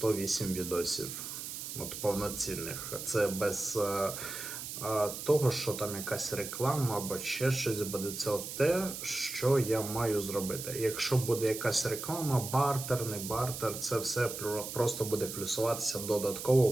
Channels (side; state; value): right; noise; hiss, 7 dB below the sound